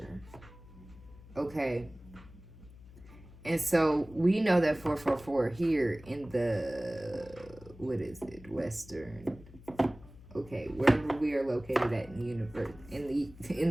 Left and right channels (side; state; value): left; noise; hum, 20 dB below the sound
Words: okay, and so we know that 444 here in the, what is it, Western, okay, wherever we are located at in the universe,